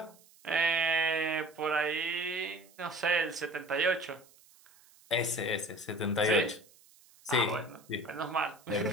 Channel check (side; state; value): right; noise; hiss, 27 dB below the sound